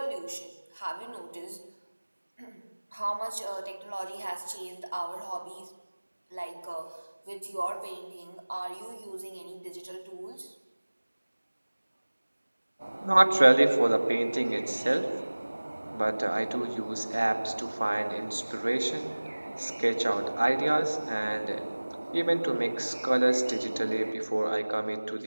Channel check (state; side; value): inverted; both; correlation -1.00